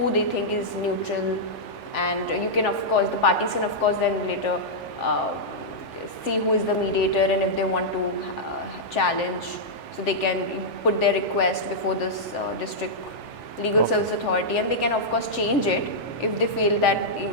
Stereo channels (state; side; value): late; right; 3.4 ms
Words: they think is neutral, and you can, of course, the parties can, of course, then later see who is the mediator, and if they want to challenge, so they can put their request before this district legal service authority, and they can of course change it if they feel that